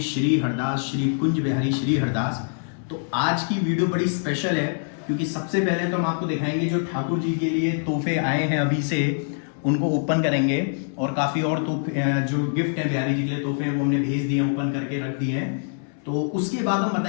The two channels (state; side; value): silent; right; 62 dB below the other